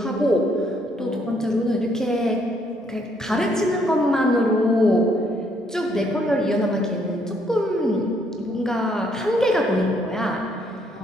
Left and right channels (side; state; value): both; normal; correlation 0.69